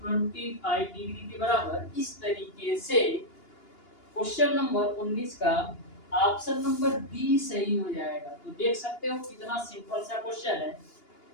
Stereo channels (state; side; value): late; right; 2.8 ms